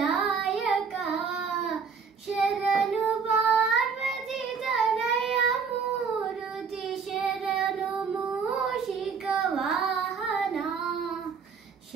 ಶರಣು ಪಾರ್ವತಿ ತನಯ ಮೂರುತಿ ಶರಣು ಮೂಷಿಕ ವಾಹನ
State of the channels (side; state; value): left; quieter; 5.8 dB